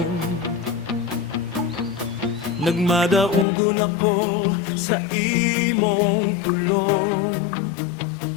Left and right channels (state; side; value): drops out; right; at 3.5 s